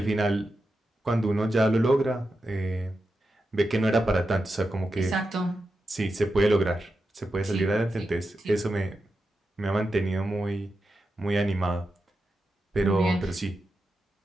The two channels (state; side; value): normal; both; correlation 0.89